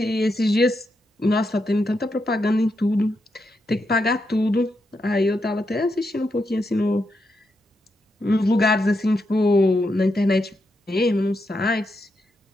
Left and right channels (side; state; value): both; normal; correlation 0.83